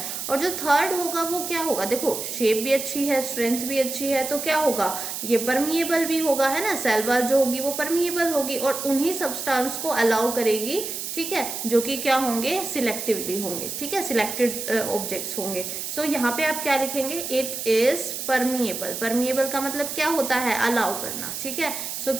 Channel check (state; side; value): noise; right; hiss, 5 dB below the sound